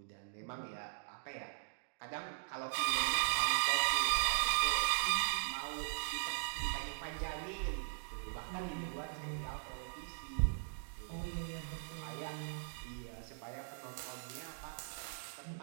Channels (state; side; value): silent; left; digital silence